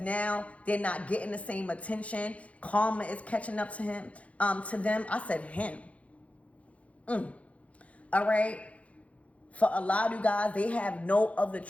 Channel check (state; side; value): late; right; 0.065 ms